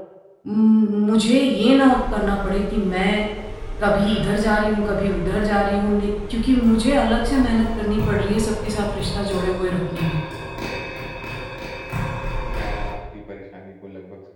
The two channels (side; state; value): both; identical; correlation 1.00